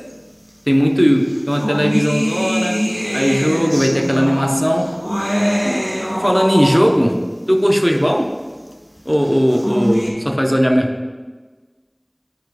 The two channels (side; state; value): both; identical; correlation 1.00